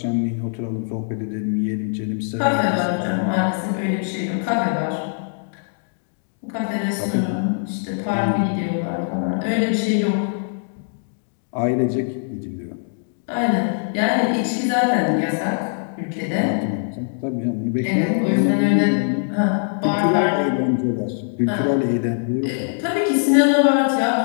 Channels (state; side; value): silent; right; digital silence